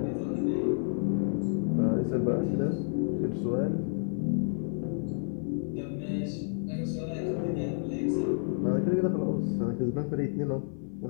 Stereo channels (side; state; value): right; silent; 58 dB below the other